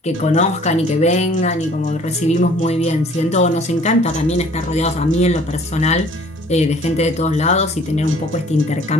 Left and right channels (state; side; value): normal; both; correlation 0.53